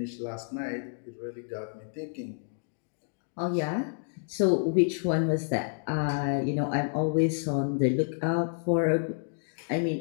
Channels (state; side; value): silent; right; digital silence